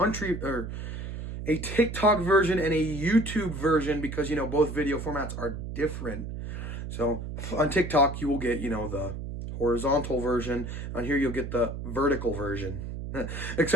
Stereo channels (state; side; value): noise; right; hum, 7 dB below the sound